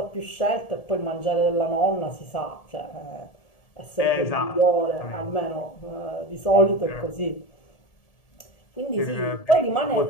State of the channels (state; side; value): late; right; 1.8 ms